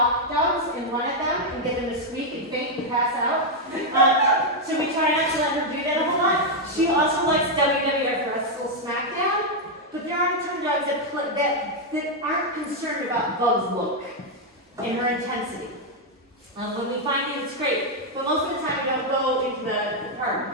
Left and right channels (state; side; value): normal; both; correlation 0.00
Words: dogs and run at them and get them to squeak and faint and pass out. So we try not to let her do that a whole lot. She also likes WWF Wrestle SmackDown, but there are some dogs that aren't concerned about Bug's look and her intensity. When we find things, it's great, but most of the time we don't go into the